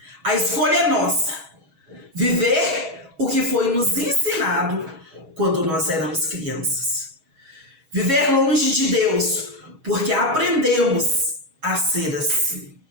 A escolha é nossa. Viver o que foi nos ensinado quando nós éramos crianças. Viver longe de Deus, porque aprendemos a ser assim.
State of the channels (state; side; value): late; left; 6.3 ms